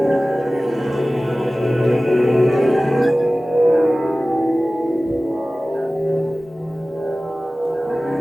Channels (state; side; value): normal; both; correlation 0.97